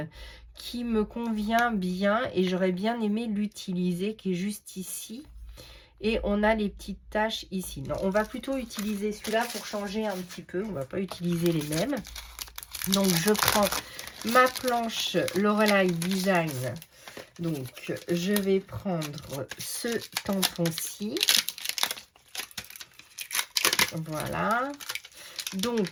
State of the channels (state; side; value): identical; both; correlation 1.00